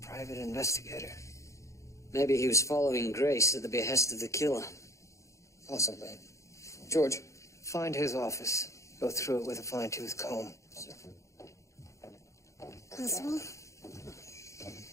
private investigator. Maybe he was following Grace at the behest of the killer. Possibly. George, find his office. Go through it with a fine-tooth comb. Constable?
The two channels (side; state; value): right; late; 0.15 ms